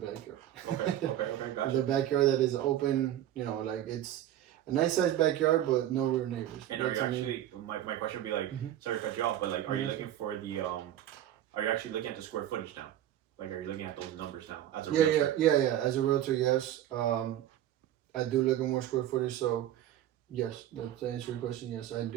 backyard. Okay, gotcha. The backyard that is open, like it's a nice sized backyard, but no rear neighbors. And are you actually, my question would be like, sorry to cut you off, but like, are you looking for the, are you actually looking at the square footage now? Like, are you looking at those numbers now as a realtor? Yeah. As a realtor, yes. I do look at more square footage. So, yes, to answer your question, yes, I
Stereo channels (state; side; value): quieter; left; 12.1 dB